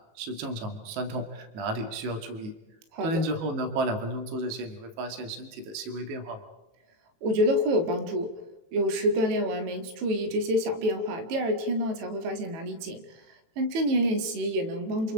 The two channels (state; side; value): late; left; 18 ms